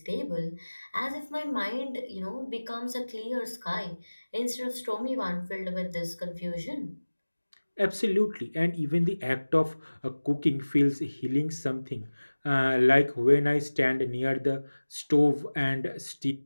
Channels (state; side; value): inverted; both; correlation -1.00